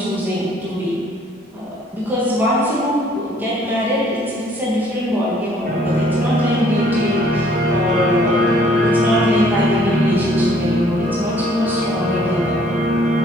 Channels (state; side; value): normal; both; correlation 0.60